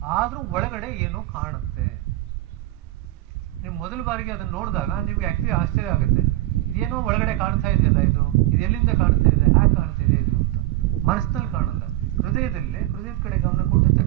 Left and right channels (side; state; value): left; quieter; 17.0 dB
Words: ಆದ್ರೂ ಒಳಗಡೆ ಏನೋ ಕಾಣುತ್ತೆ. ನೀವು ಮೊದಲ ಬಾರಿಗೆ ಅದನ್ನ ನೋಡಿದಾಗ ನಿಮ್ಗೆ ಆಕ್ಚುಲಿ ಆಶ್ಚರ್ಯ ಆಗುತ್ತೆ, ಇದೇನೋ ಒಳಗಡೆ ಕಾಣ್ತಾ ಇದೆಯಲ್ಲ, ಇದು ಎಲ್ಲಿಂದ ಕಾಣ್ತಾ ಇದೆ, ಹ್ಯಾಕ್ ಕಾಣ್ತಾ ಇದೆ ಇದು ಅಂತ. ಮನಸ್ಸಿನಲ್ಲಿ ಕಾಣಲ್ಲ, ಹೃದಯದಲ್ಲಿ, ಹೃದಯದ ಕಡೆ ಗಮನ ಕೊಟ್ಟಿದ